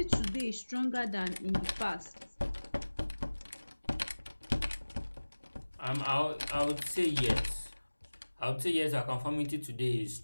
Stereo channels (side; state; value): both; inverted; correlation -1.00